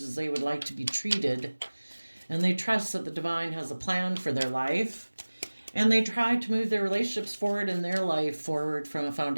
as they would like to be treated, and they trust that the divine has a plan for their life, and they try to move their relationships forward and their life forward from a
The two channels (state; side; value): inverted; both; correlation -1.00